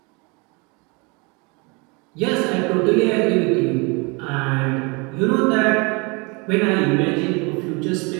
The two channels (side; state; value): left; quieter; 29.2 dB